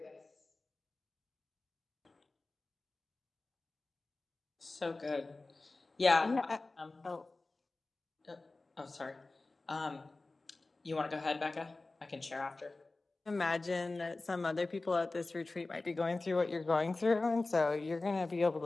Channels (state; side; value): quieter; right; 3.3 dB